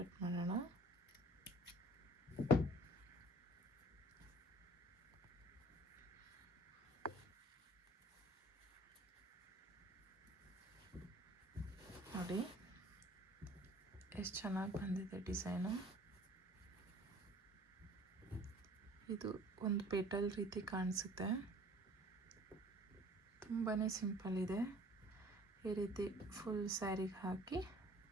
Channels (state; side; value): normal; both; correlation 0.51